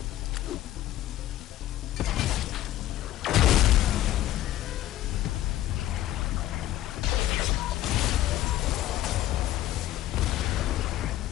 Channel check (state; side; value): quieter; right; 14.0 dB